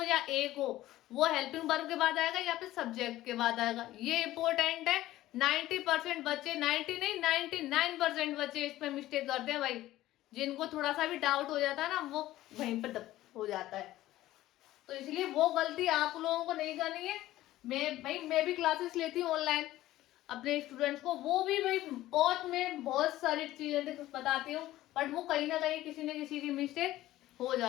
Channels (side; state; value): right; quieter; 15.4 dB